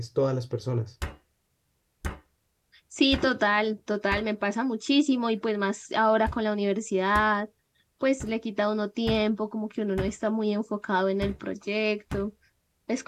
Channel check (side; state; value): both; identical; correlation 1.00